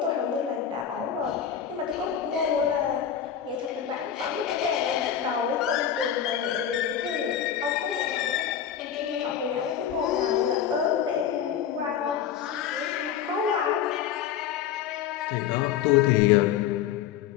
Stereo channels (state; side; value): quieter; right; 9.2 dB